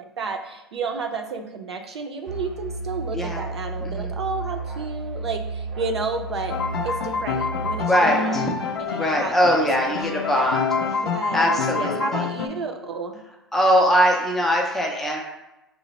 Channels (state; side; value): normal; both; correlation 0.50